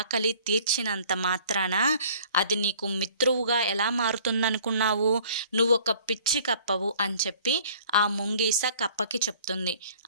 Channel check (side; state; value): both; inverted; correlation -0.53